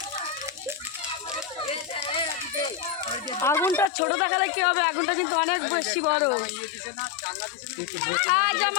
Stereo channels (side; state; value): right; drops out; at 3.9 s